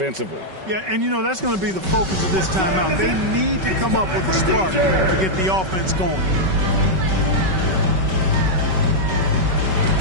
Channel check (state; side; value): late; left; 5.3 ms